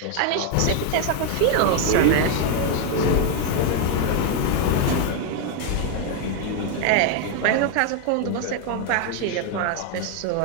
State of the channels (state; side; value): different; both; correlation 0.01